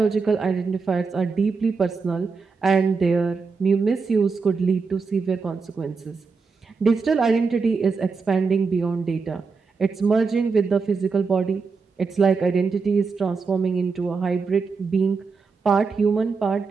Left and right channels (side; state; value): left; quieter; 4.8 dB